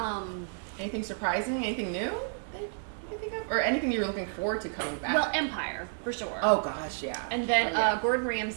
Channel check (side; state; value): left; silent; digital silence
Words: Anything surprising? Anything new that you can think of? Or anything you're looking forward to coming back? Well, Empire, for sure. Oh, gosh, yeah. And then Gordon